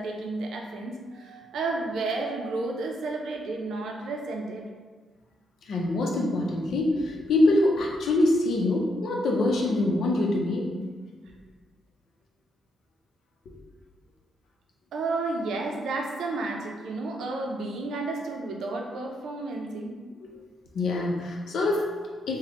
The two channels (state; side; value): normal; both; correlation 0.76